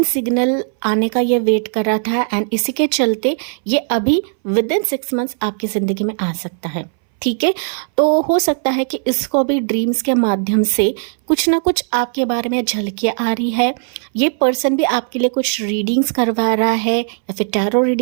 सिग्नल आने का ये वेट कर रहा था, एंड इसी के चलते ये अभी विदिन 6 मंथ्स आपकी ज़िंदगी में आ सकता है। ठीक है। तो हो सकता है कि इसको भी ड्रीम्स के माध्यम से कुछ ना कुछ आपके बारे में झलकियाँ आ रही है। ये पर्सन भी आपके लिए कुछ रीडिंग्स करवा रहा है, या फिर टैरो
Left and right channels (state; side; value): silent; left; 63 dB below the other